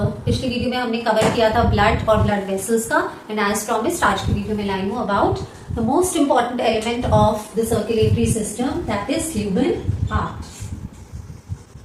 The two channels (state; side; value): identical; both; correlation 1.00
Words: पिछली वीडियो में हमने कवर किया था ब्लड और ब्लड वेसल्स का, एंड एज प्रॉमिस्ड आज की वीडियो में लाई हूँ about the most important element of the circulatory system, that is human heart.